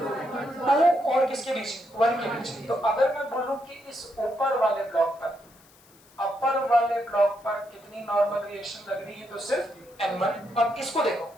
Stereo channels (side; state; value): left; noise; hiss, 28 dB below the sound